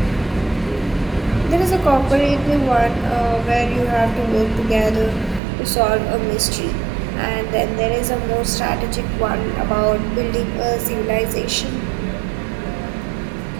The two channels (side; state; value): left; drops out; at 5.4 s